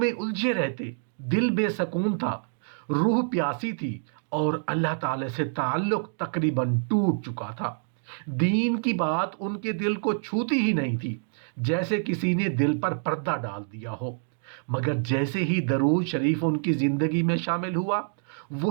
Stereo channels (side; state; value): left; silent; digital silence